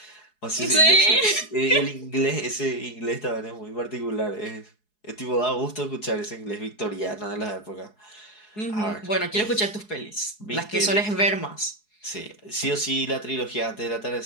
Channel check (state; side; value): late; right; 4.7 ms